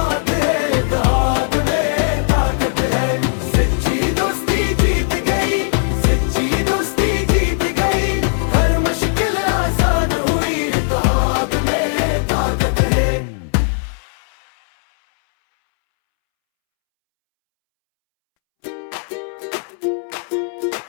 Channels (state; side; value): silent; right; 67 dB below the other